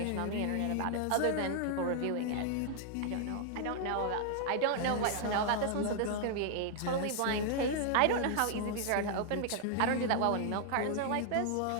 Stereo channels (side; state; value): both; different; correlation 0.00